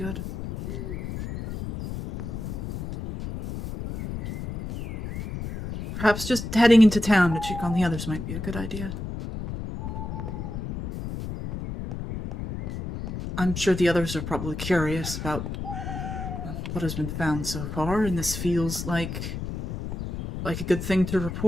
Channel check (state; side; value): noise; left; rumble, 6 dB below the sound